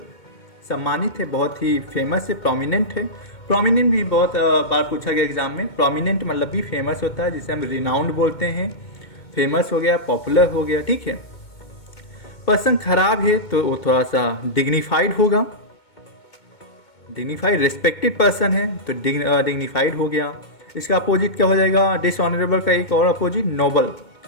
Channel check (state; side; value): late; right; 2.2 ms